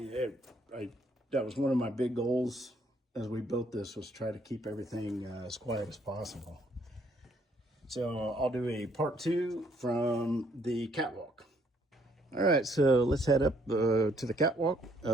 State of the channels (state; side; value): normal; both; correlation 0.67